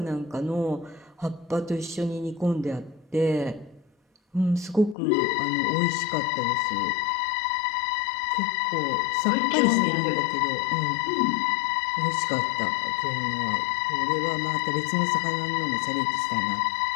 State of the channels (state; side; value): drops out; right; at 5.0 s